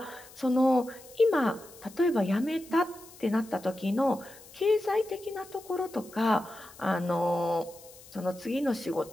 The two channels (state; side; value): noise; left; hiss, 21 dB below the sound